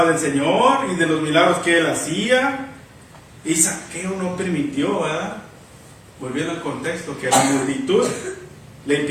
del Señor y de los milagros que él hacía, y Zaqueo no permitió, ¿verdad? Volviendo al contexto, que la le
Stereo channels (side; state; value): both; identical; correlation 1.00